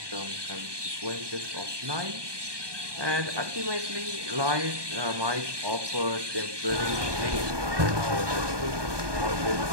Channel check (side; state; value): left; late; 1.2 ms